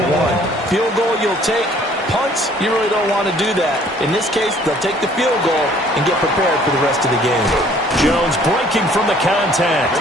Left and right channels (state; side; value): normal; both; correlation 0.57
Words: Field goal you'll take. Punts, you really don't want to do that. In this case, they'll take the field goal and get prepared for the rest of the game. Jones breaking from the